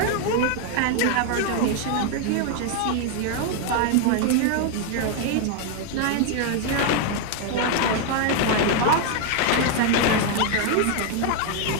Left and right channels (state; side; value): different; both; correlation 0.01